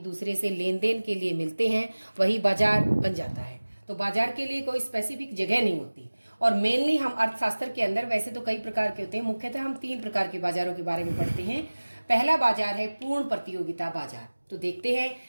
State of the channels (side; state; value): both; inverted; correlation -1.00